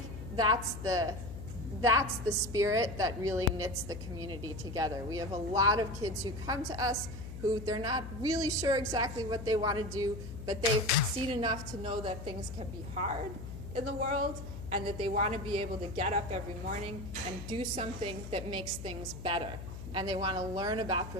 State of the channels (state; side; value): noise; left; hum, 10 dB below the sound